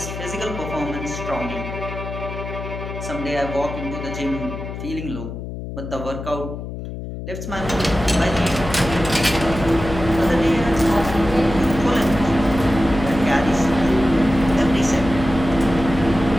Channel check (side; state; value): left; noise; hum, 8 dB below the sound